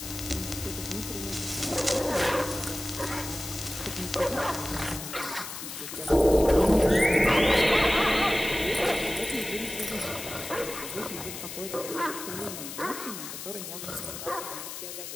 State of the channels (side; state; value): left; noise; hiss, 9 dB below the sound